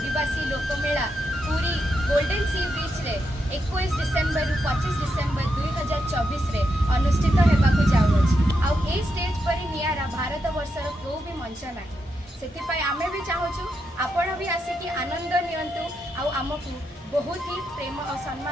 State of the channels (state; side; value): normal; both; correlation 0.83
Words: लोकमेला पूरी गोल्डन सी बीच रे 21 डिसेम्बर रु 25 डिसेम्बर 2024 रे अनुष्ठित होगाकू जाऊँगी। आउ ए स्टेज पर नियारा भारत वर्षर क्यों भी मंच ना से आमे भी चाहूँ आपण भी आसिकी आनंद नियंतु आउ आमको बहुत ही प्रेम और